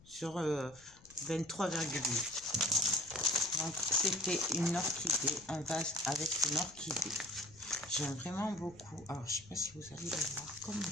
sur 23,8. Donc c'était une orchidée, un vase avec une orchidée. J'aime vraiment beaucoup. Alors je sais pas si vous allez le voir comme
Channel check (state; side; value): noise; left; rumble, 24 dB below the sound